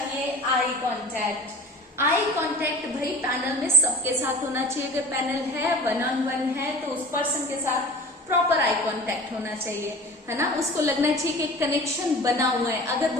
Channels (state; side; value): normal; both; correlation 0.41